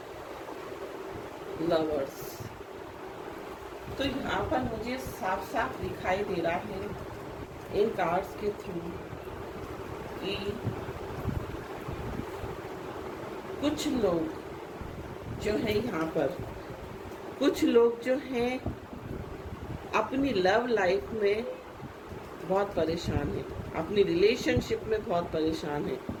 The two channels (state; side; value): identical; both; correlation 1.00